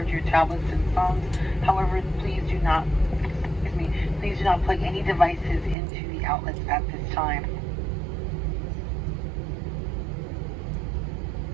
your tablets and phones. However, please do not plug any devices into the outlets at this time.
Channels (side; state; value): left; drops out; at 5.8 s